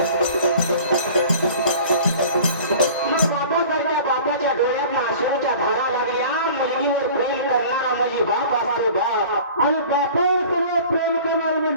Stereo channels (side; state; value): both; inverted; correlation -0.44